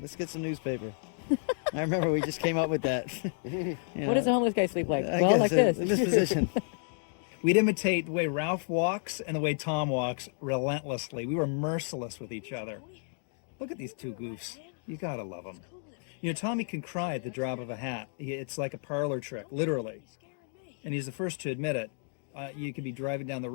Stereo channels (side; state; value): right; silent; digital silence